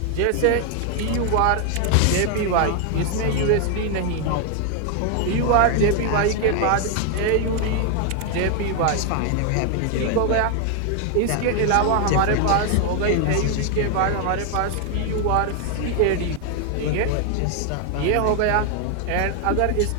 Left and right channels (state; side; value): different; both; correlation 0.00